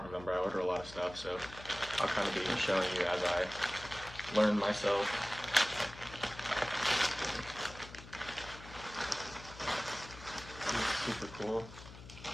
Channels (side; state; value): left; noise; hum, 16 dB below the sound